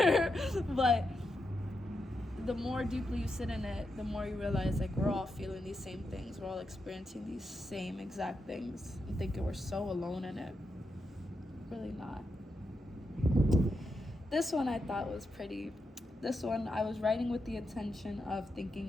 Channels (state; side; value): normal; both; correlation 0.85